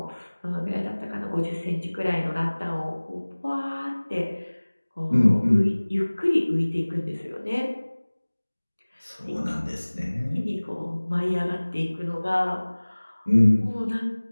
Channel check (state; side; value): inverted; both; correlation -1.00